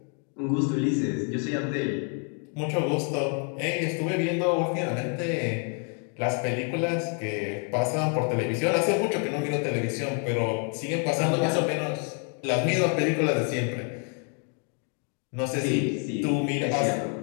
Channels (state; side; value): quieter; right; 39.4 dB